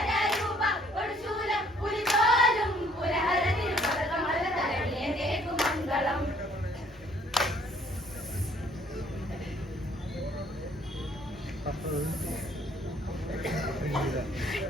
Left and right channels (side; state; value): both; normal; correlation 0.61